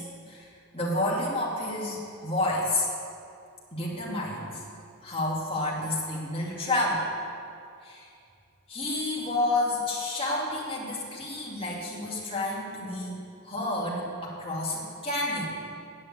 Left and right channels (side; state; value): both; normal; correlation 0.04